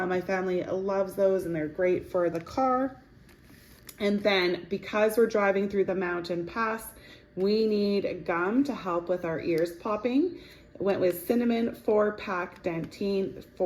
family loves those, and they're great for the car. And then because we're driving through the mountain pass, we need gum to help with our ears popping. Went with cinnamon 4-pack Dentine,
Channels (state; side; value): identical; both; correlation 1.00